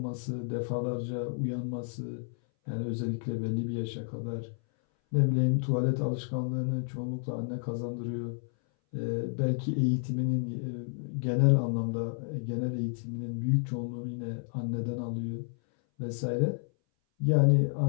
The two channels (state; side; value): silent; right; 57 dB below the other